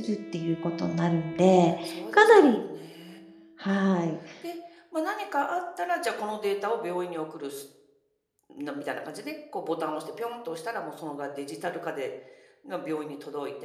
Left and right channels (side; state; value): both; identical; correlation 1.00